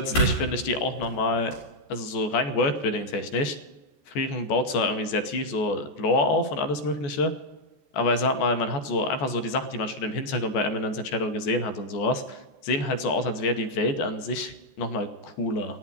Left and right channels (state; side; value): late; right; 14 ms